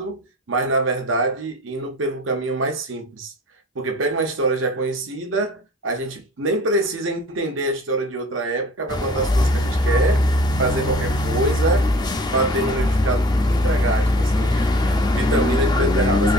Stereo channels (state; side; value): normal; both; correlation 0.45